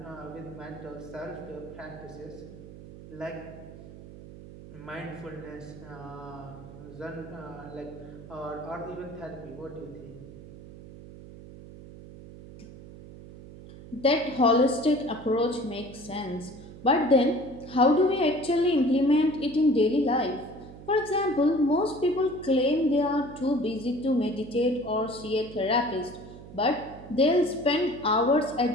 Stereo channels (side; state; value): right; noise; hum, 16 dB below the sound